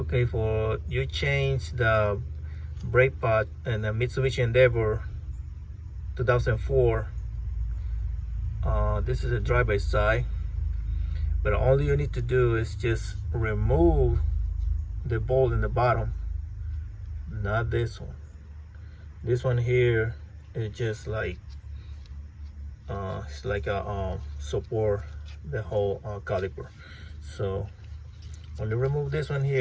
for you change the brake pad in the Mitsubishi Endeavor 2004. This is a drive-by side, but all you need to do is just remove the bolt in the bottom, not this one. This one here is just like it's like a support the whole caliper. So only remove this one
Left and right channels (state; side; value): identical; both; correlation 1.00